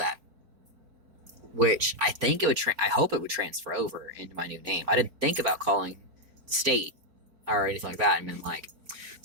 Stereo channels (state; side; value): late; left; 4.4 ms